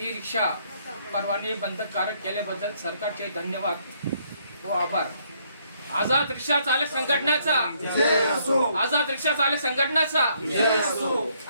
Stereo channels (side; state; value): both; inverted; correlation -0.69